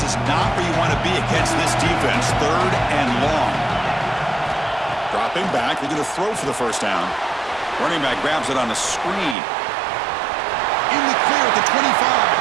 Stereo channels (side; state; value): left; drops out; at 9.3 s